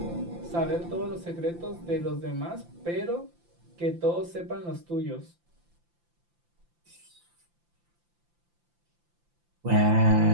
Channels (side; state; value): left; late; 5.8 ms